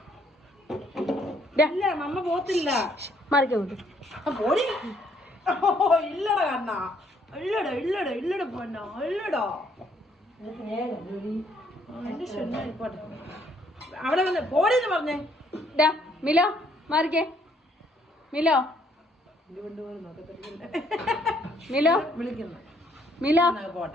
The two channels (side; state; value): both; normal; correlation 0.67